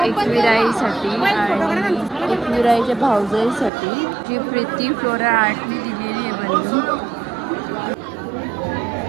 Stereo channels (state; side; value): drops out; left; at 3.7 s